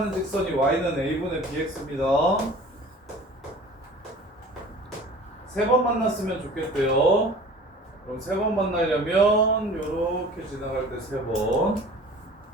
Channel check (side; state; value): both; normal; correlation 0.44